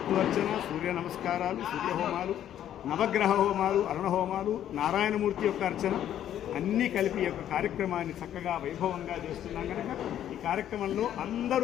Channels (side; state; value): right; quieter; 10.9 dB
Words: సూర్య నమస్కారాలు, సూర్యహోమాలు, నవగ్రహ హోమాలు, అరుణ హోమాలు, నారాయణమూర్తి యొక్క అర్చన అన్నీ కలిపి యొక్క కార్యక్రమాన్ని చక్కగా వైభవంగా చేస్తున్నాం. కనుక ఈ కార్యక్రమంలో